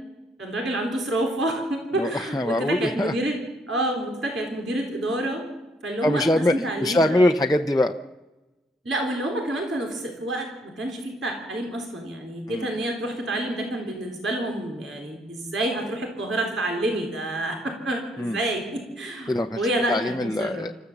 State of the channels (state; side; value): normal; both; correlation 0.69